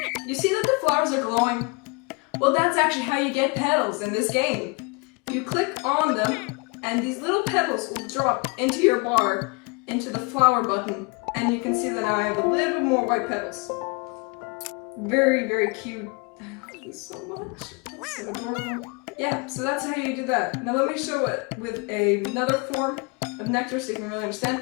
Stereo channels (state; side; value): quieter; right; 29.2 dB